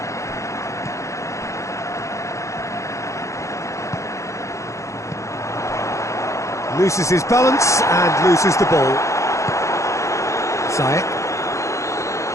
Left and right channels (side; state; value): right; late; 0.15 ms